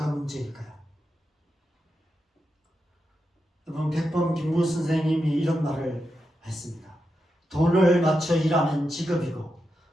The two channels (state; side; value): normal; both; correlation 0.87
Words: 문제일까요? 여러분, 백범 김무 선생님이 이런 말을 했습니다. 돈을 맞춰 일하면 직업이고